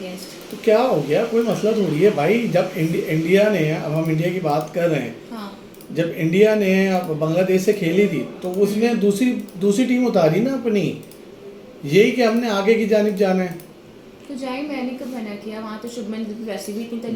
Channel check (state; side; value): identical; both; correlation 1.00